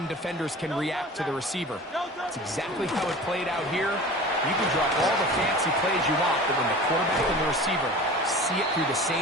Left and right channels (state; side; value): normal; both; correlation 0.38